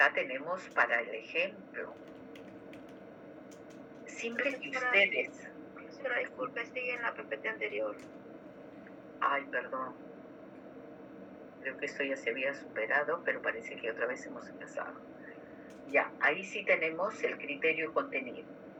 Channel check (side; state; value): both; identical; correlation 1.00